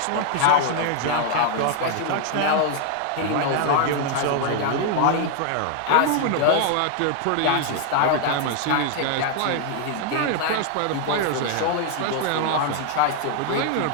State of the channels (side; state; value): both; different; correlation 0.00